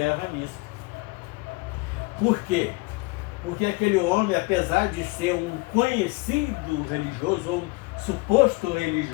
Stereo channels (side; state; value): right; quieter; 24.5 dB